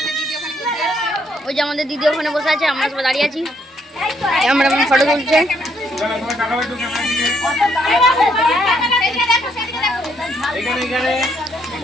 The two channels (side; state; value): both; normal; correlation 0.72